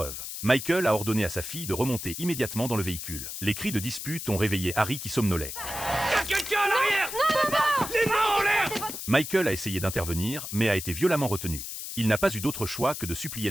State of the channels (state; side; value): noise; left; hiss, 7 dB below the sound